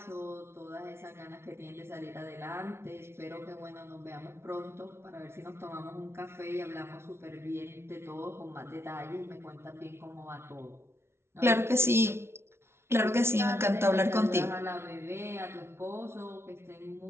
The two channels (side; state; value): left; late; 0.12 ms